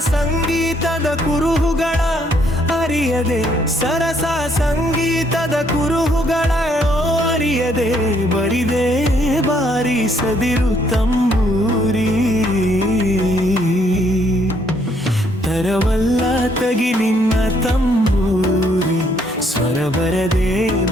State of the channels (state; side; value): normal; both; correlation 0.69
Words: ಸಂಗೀತದ ಕುರುಹುಗಳ ಅರಿಯದೆ, ಸರಸ ಸಂಗೀತದ ಕುರುಹುಗಳ ಅರಿಯದೆ ಬರಿದೆ ಬಾರಿಸದಿರು ತಂಬೂರಿ. ತರವಲ್ಲ ತಗಿ ನಿನ್ನ ತಂಬೂರಿ, ಸ್ವರ ಬರದೆ